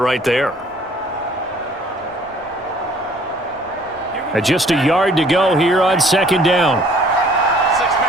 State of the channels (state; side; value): normal; both; correlation 0.56